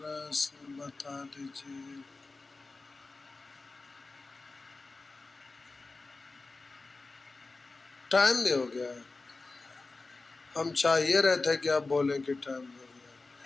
बता दीजिए। टाइम भी हो गया। हम चाहिए रहे थे कि आप बोलें कि टाइम हो गया।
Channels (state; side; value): quieter; right; 3.6 dB